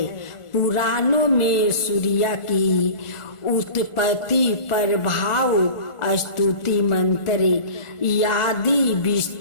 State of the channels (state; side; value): late; right; 1.4 ms